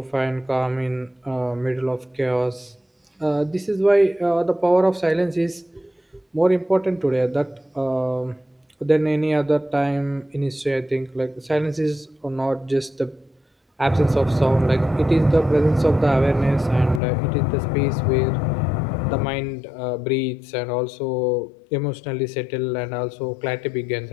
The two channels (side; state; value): right; drops out; at 17.0 s